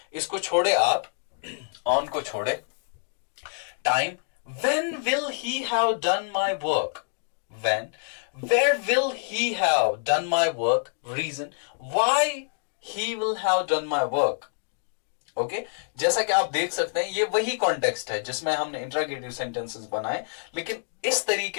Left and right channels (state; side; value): silent; right; digital silence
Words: इसको छोड़े आप, ऑन को छोड़े. Time, when will he have done my work, when, where will he have done my work, reason, why he will have done my work. Okay, जैसा कि आप देख सकते हैं ये वही कॉन्टेक्स्ट है जिसमें हमने इंट्रोगेटिव सेंटेंसेस बनाए, लेकिन इस